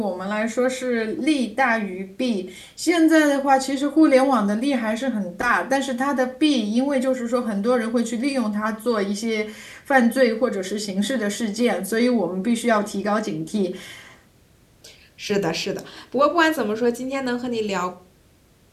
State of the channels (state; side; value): identical; both; correlation 1.00